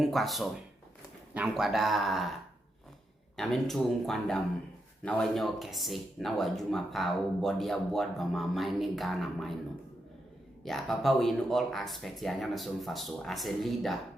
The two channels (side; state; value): both; normal; correlation 0.83